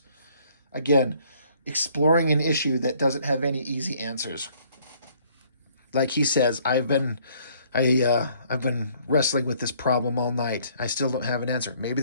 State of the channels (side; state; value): both; inverted; correlation -0.62